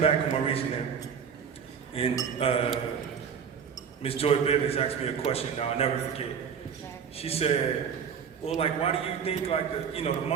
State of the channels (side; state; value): left; quieter; 7.2 dB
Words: of my reasoning, and Miss Joy Bivens asked me a question. Now I'll never forget. She said, "Well, like, why do you think like the